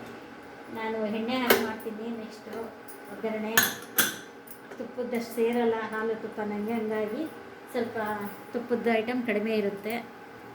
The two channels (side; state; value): both; identical; correlation 1.00